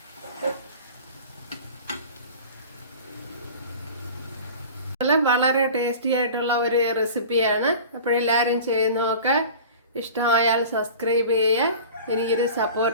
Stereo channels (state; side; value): inverted; both; correlation -0.39